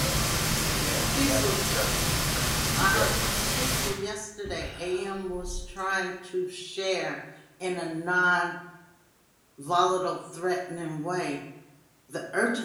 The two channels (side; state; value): both; identical; correlation 1.00